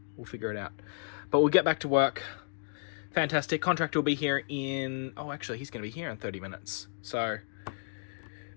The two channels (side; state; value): right; silent; digital silence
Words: We'll figure it out. But we'll get back to work. Fantastic. Contractor will be here in... Oh, actually, he's going to be here in 30 minutes. So